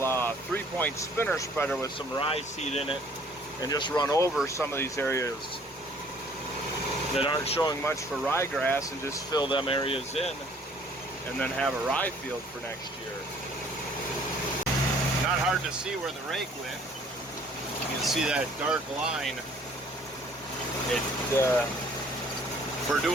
3-point spinner spreader with some rye seed in it and just run over some of these areas that aren't showing much for ryegrass and just fill them areas in and then have a rye field for next year. Not hard to see where the rake went. You can see that dark line. For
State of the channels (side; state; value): both; normal; correlation 0.57